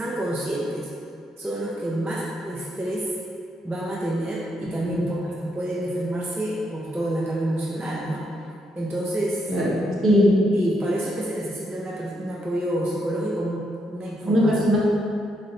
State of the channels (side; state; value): both; normal; correlation 0.78